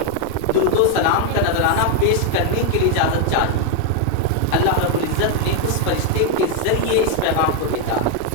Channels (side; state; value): both; different; correlation 0.01